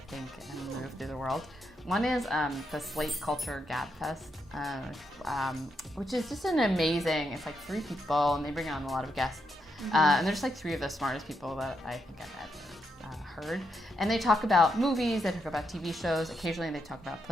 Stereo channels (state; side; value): normal; both; correlation 0.81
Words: think and move through the world. One is the Slate Culture Gabfest, which is just an amazing, it's like 3 people and they bring on a lot of guests. And there's like 3 of the smartest people that I think I've ever heard. And they talk about movies, they talk about TV shows, occasionally they talk about